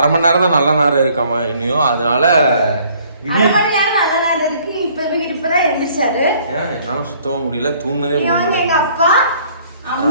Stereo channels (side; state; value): both; inverted; correlation -0.60